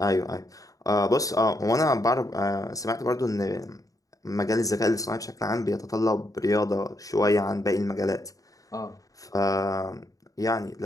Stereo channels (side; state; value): right; late; 0.17 ms